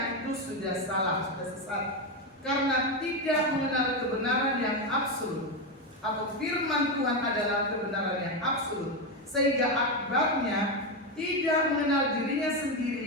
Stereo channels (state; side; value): normal; both; correlation 0.10